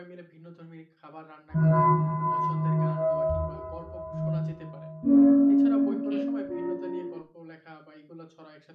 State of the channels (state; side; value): identical; both; correlation 1.00